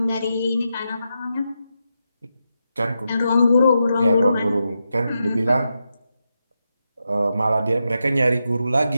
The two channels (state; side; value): inverted; both; correlation -0.86